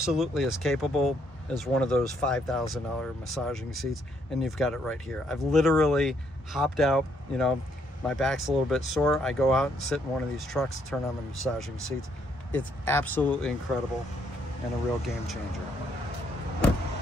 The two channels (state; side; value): normal; both; correlation 0.71